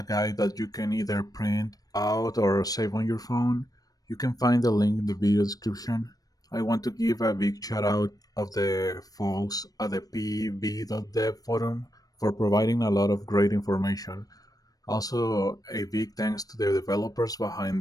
guide that you can either print out or save on your phone. You can find the link in the video description. I want to give a big shout out of the folks at the pv.dev forum for providing a lot of great information. Also, a big thanks to the developers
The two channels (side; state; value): right; late; 0.18 ms